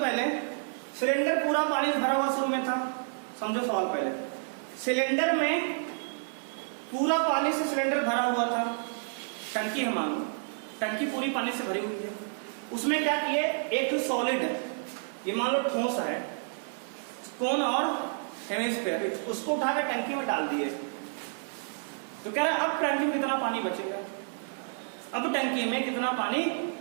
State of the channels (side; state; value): left; silent; digital silence